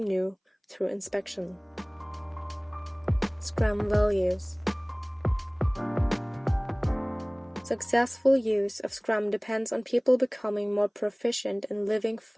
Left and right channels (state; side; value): identical; both; correlation 1.00